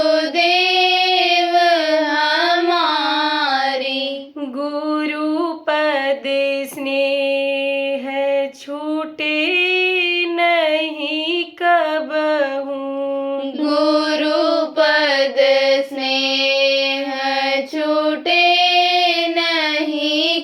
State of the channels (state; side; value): identical; both; correlation 1.00